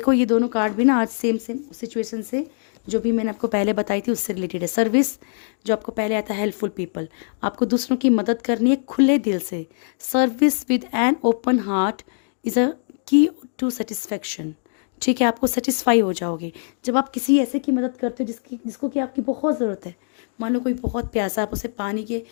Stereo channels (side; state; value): right; silent; 64 dB below the other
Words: ये दोनों कार्ड भी ना आज सेम सिचुएशन से जो भी मैंने आपको पहले बताई थी उससे रिलेटेड है। सर्विस जो आपको पहले आता है, हेल्पफुल पीपल, आपको दूसरों की मदद करनी है खुले दिल से। Service with an open heart is a की टू सेटिस्फैक्शन। ठीक है, आपको सेटिस्फाई हो जाओगे जब आप किसी ऐसे की मदद करते हो जिसको कि आपकी बहुत ज़रूरत है। मान लो कोई बहुत प्यासा, आप उसे पानी के